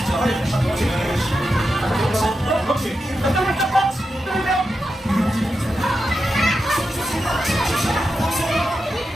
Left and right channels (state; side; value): normal; both; correlation 0.89